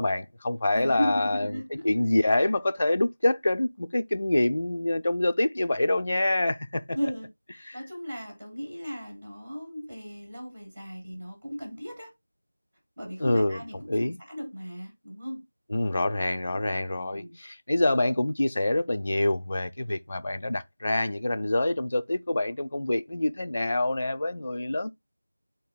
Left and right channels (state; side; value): inverted; both; correlation -0.97